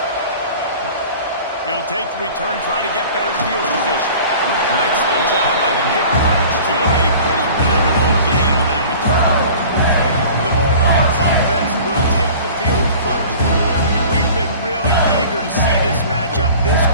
He'll take the return, try to get better field position. Excellent job by the kick coverage team. A pretty minimal gain on that return. The Bulldogs offense will take the field first. And we've been really eager to see this matchup. This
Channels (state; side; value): inverted; both; correlation -0.43